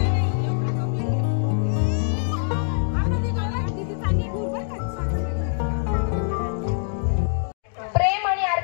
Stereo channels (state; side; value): silent; right; digital silence